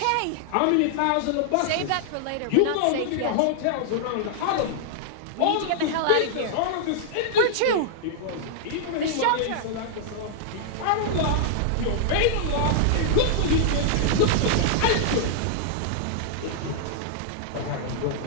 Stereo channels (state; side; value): different; both; correlation -0.01